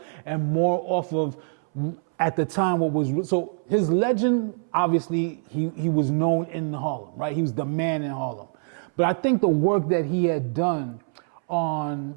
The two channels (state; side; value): silent; left; 62 dB below the other